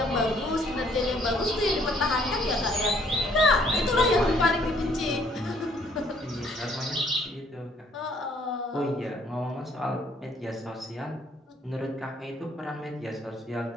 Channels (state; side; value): normal; both; correlation 0.64